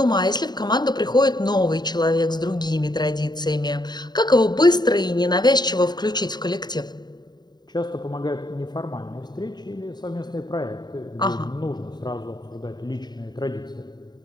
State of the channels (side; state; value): right; late; 0.20 ms